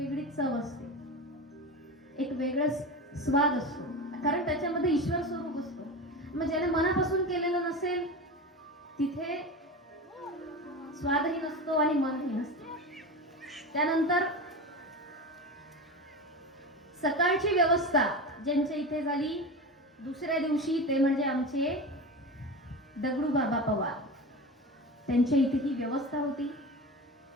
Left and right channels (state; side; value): normal; both; correlation 0.26